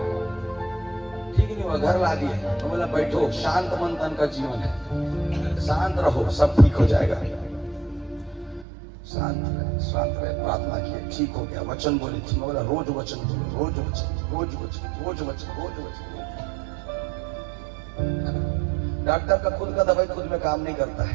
ठीक नहीं हुआ, घर ला दिए। तो बोला बैठो, शांत मन तन का जीवन है, शांत रहो, सब ठीक हो जाएगा। शांत रहे, प्रार्थना किए, ठीक हो गया। वचन बोले, ठीक। बोला रोज वचन बोलो, रोज वचन, रोज वचन, रोज वचन, रोज वचन। डॉक्टर का खुद का दवाई खुद में काम नहीं करता है,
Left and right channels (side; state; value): left; drops out; at 8.7 s